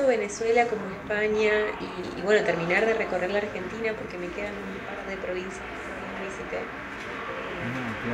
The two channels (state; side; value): identical; both; correlation 1.00